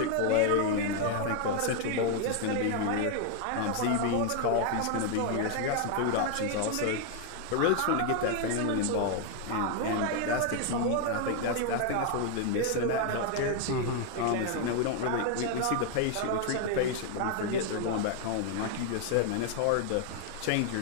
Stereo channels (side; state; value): both; different; correlation 0.00